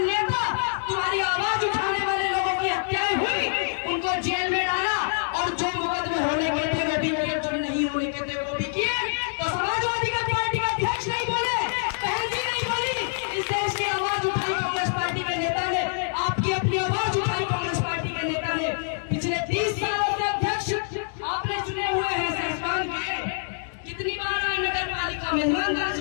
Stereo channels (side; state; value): right; silent; digital silence